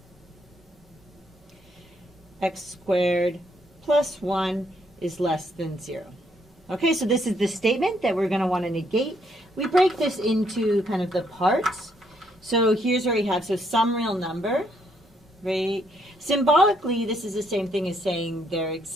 x squared plus 1 is less than 0. Okay, so this is the statement that we're going to want to negate. We break this into kind of the parts. So here's where we have, so some real number, right? Symbolically, this is the same thing as saying there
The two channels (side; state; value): both; normal; correlation 0.72